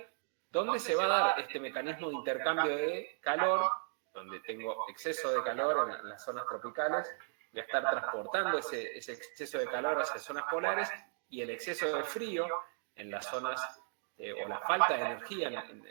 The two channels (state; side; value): silent; left; digital silence